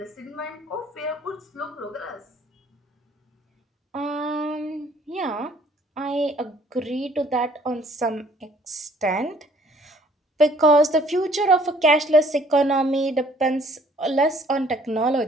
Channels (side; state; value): both; normal; correlation 0.59